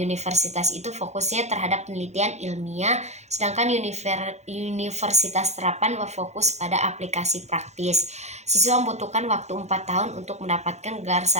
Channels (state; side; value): late; left; 0.33 ms